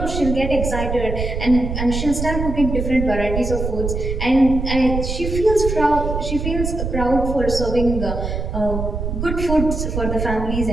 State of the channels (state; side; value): noise; right; rumble, 3 dB below the sound